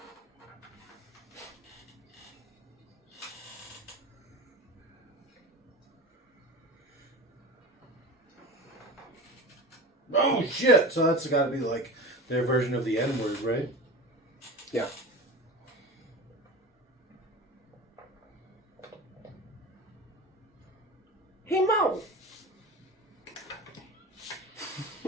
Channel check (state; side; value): normal; both; correlation 0.31